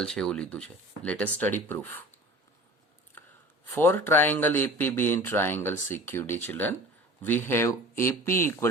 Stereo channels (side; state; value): both; normal; correlation 0.40